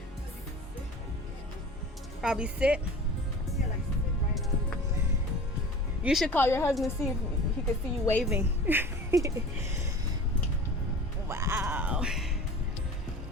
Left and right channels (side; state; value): both; normal; correlation 0.39